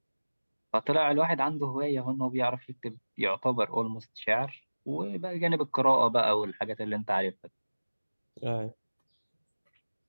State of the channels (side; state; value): both; inverted; correlation -1.00